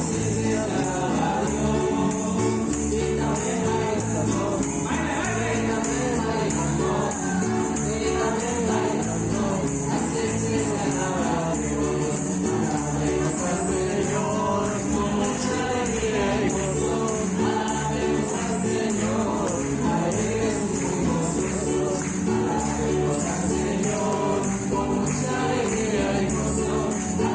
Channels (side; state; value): both; identical; correlation 1.00